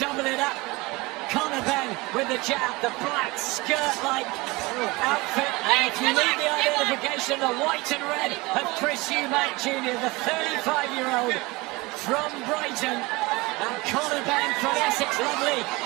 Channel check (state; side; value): quieter; left; 23.4 dB